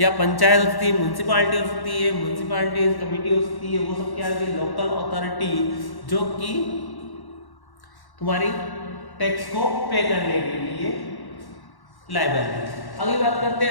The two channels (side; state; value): right; late; 1.1 ms